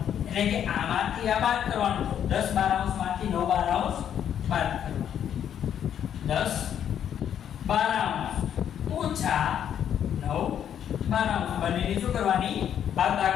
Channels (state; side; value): quieter; right; 9.4 dB